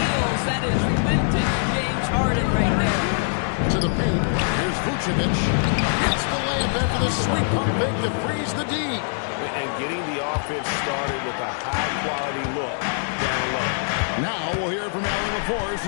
That is vintage James Harden right there. To the paint. Here's Vucevic. Hits the layup after the sweet pump fake to freeze the D. And getting the offense started with a high-quality look down low. Now we'll hear from Allie LaForce,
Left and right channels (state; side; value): silent; right; digital silence